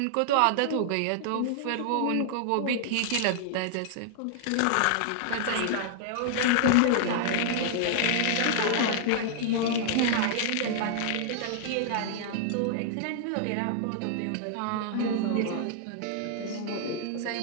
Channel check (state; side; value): different; both; correlation 0.00